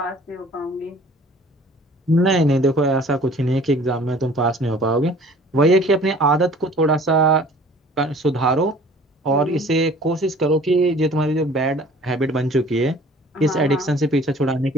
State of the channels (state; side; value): normal; both; correlation 0.50